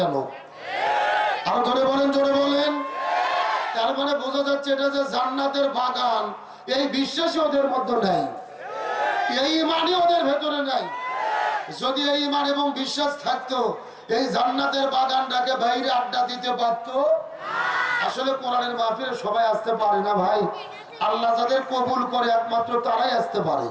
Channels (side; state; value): both; identical; correlation 1.00